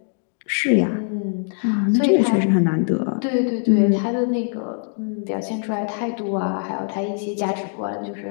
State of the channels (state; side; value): silent; right; 64 dB below the other